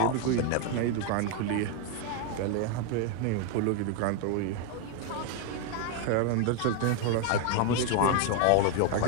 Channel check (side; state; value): both; different; correlation 0.00